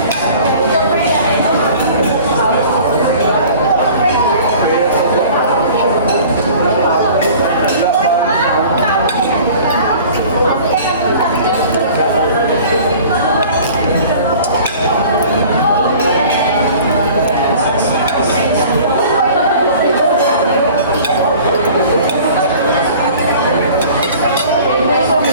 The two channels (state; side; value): inverted; both; correlation -0.46